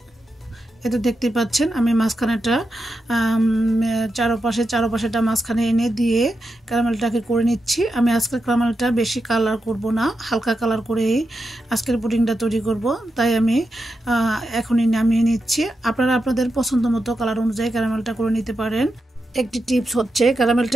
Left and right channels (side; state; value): both; normal; correlation 0.87